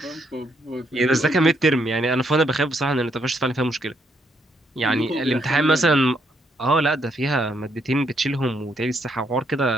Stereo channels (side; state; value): both; normal; correlation 0.74